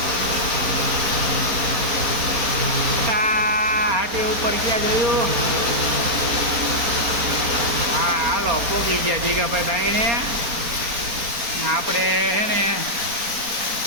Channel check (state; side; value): late; left; 4.3 ms